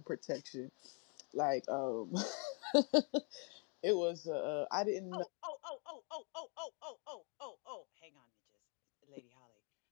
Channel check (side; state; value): right; quieter; 37.8 dB